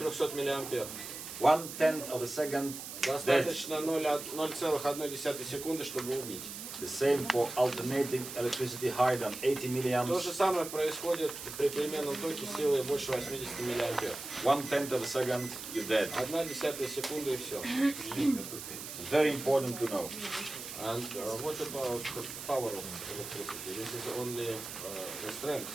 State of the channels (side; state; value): right; noise; hiss, 9 dB below the sound